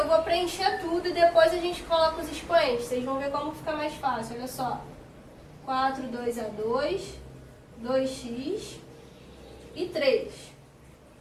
vou preencher tudo e depois a gente coloca os expoentes. Vocês vão ver como fica mais fácil, olha só. 4, 2 a 2, 2x e 3.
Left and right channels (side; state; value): both; identical; correlation 1.00